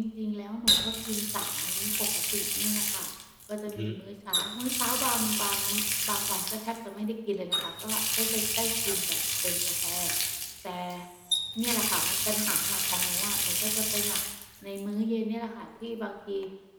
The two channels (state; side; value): identical; both; correlation 1.00